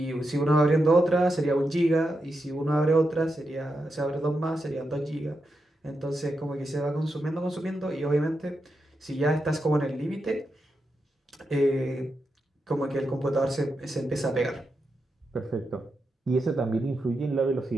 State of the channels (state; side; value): normal; both; correlation 0.86